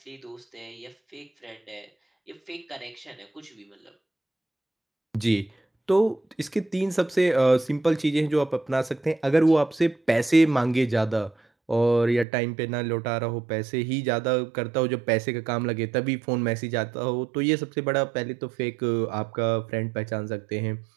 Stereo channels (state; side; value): drops out; left; at 12.2 s